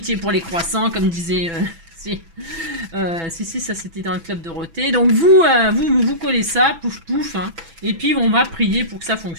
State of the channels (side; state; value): left; late; 6.0 ms